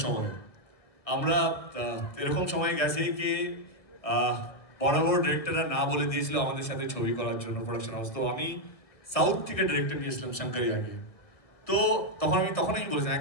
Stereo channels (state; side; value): late; right; 1.8 ms